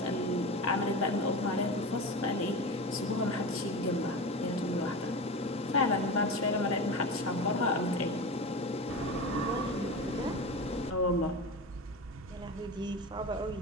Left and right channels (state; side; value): normal; both; correlation 0.26